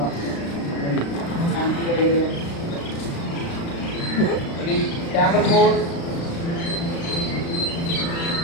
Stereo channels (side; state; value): right; late; 35 ms